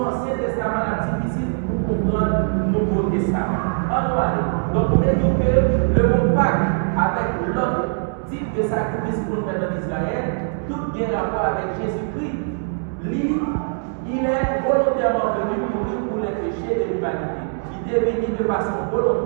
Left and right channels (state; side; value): silent; left; 64 dB below the other